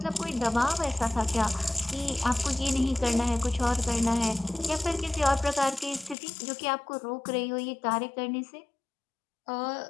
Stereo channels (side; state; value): right; drops out; at 6.2 s